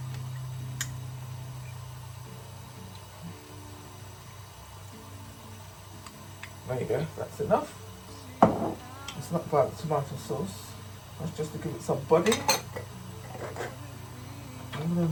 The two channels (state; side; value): identical; both; correlation 1.00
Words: There you go, that's enough. It's not about the tomato sauce, that's just to give it some body. I'm going